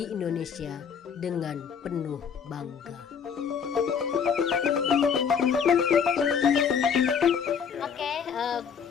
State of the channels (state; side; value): quieter; right; 6.9 dB